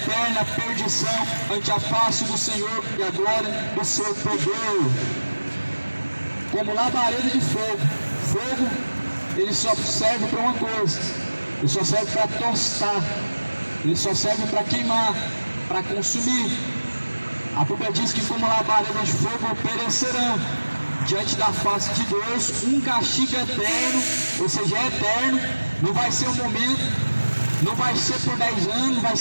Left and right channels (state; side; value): inverted; both; correlation -1.00